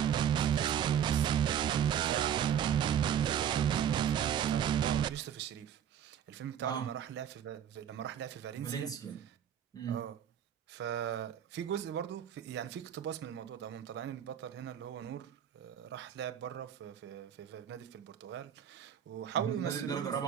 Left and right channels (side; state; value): left; quieter; 9.3 dB